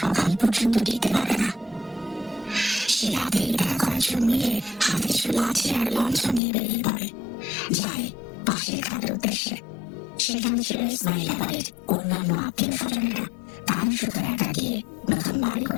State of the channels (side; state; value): right; drops out; at 6.4 s